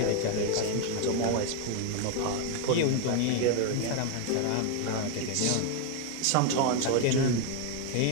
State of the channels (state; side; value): different; both; correlation 0.01